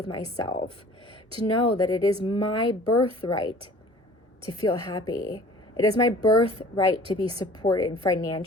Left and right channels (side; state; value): both; normal; correlation 0.47